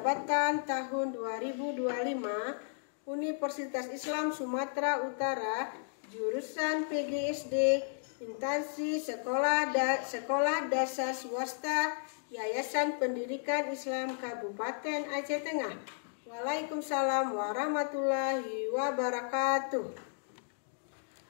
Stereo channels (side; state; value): right; silent; digital silence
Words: tahun 2025, Universitas Islam Sumatera Utara, jurusan PGSD, instansi sekolah dasar swasta, Yayasan Pendidikan Islam Kabupaten Aceh Tengah. Waalaikumsalam warahmatullahi wabarakatuh.